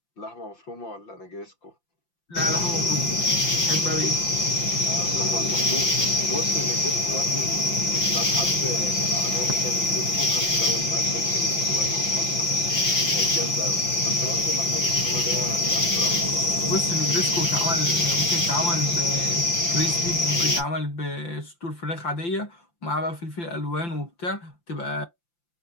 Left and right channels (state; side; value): late; right; 5.8 ms